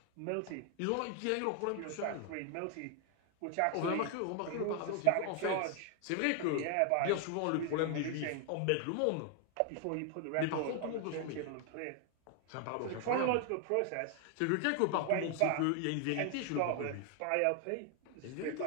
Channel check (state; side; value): different; both; correlation 0.00